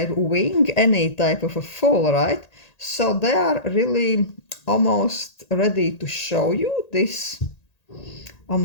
wing any type of a fool, right? So they are really almost ready to show you this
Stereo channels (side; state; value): right; late; 1.9 ms